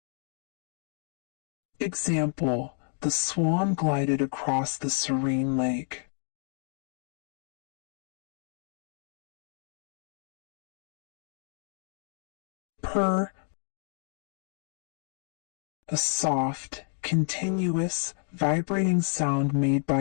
Example, the swan glided across the serene lake. Purr, a soft, continuous, vibrating sound made by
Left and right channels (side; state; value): right; silent; 57 dB below the other